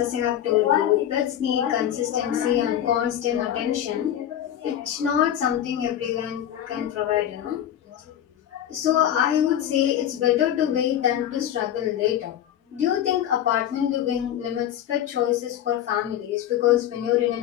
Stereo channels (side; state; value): right; quieter; 10.8 dB